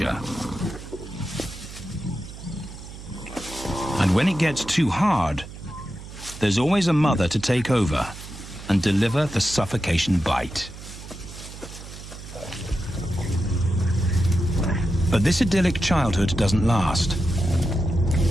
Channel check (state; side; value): noise; right; hum, 14 dB below the sound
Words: And when it gets too hard, there's always a mother to take over and deliver the suffocation bite. But this idyllic childhood doesn't last.